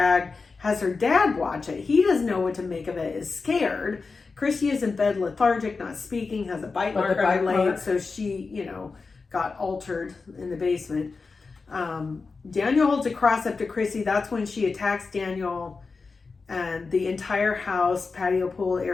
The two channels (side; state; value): right; quieter; 4.4 dB